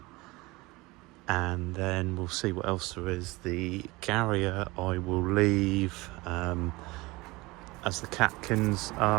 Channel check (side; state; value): left; quieter; 22.3 dB